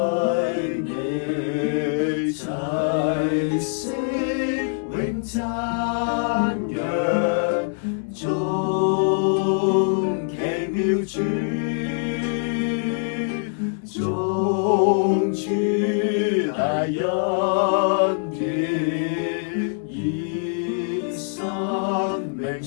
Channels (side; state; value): right; silent; 60 dB below the other